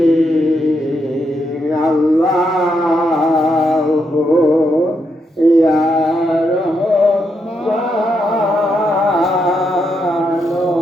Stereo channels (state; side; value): normal; both; correlation 0.80